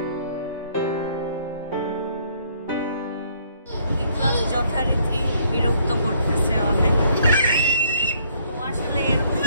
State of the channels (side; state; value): both; inverted; correlation -0.65